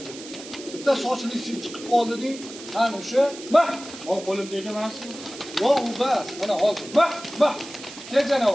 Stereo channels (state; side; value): noise; right; hiss, 14 dB below the sound